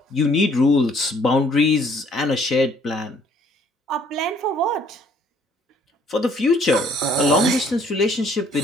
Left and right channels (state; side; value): normal; both; correlation 0.61